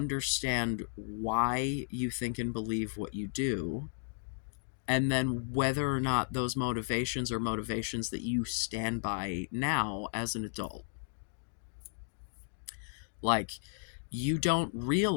why you think and believe what you do, and then whether or not those motivations are motivations that you stand by now as an adult. Like, you don't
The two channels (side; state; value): right; silent; digital silence